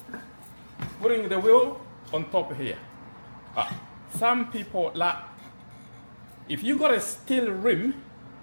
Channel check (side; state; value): both; inverted; correlation -1.00